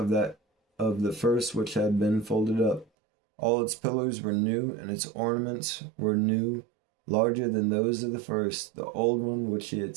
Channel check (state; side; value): drops out; left; at 2.9 s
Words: the first which had been folded up. All its pillars were new, and its ornaments were new, larger than those of the first, the old one which he had